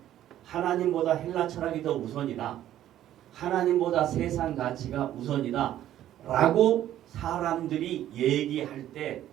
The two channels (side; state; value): left; quieter; 12.3 dB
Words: 하나님보다 헬라 철학이 더 우선이다. 하나님보다 세상 가치가 우선이다. 라고 사람들이 얘기할 때